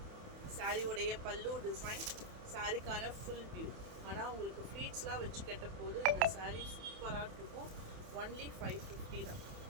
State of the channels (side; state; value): left; late; 28 ms